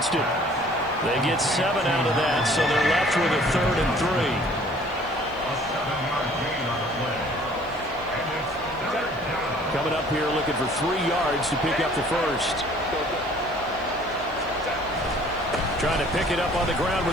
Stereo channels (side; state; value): left; noise; hiss, 28 dB below the sound